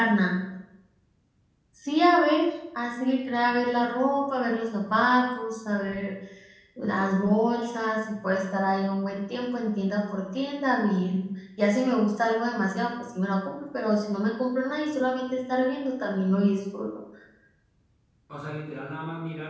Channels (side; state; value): both; identical; correlation 1.00